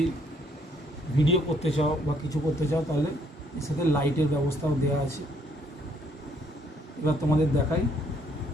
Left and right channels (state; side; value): normal; both; correlation 0.67